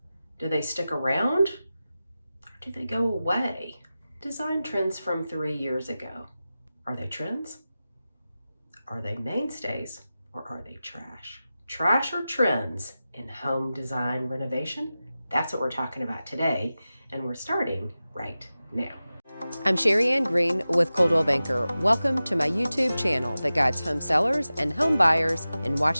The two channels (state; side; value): inverted; both; correlation -0.95